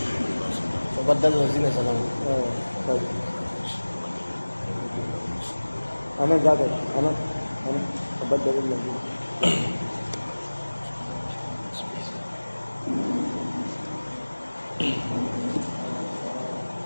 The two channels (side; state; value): both; inverted; correlation -1.00